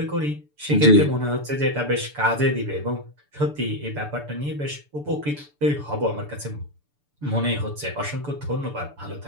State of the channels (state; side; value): late; left; 6.9 ms